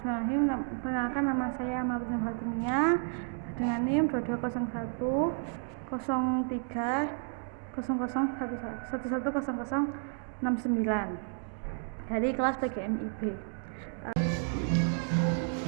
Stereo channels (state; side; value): silent; left; 57 dB below the other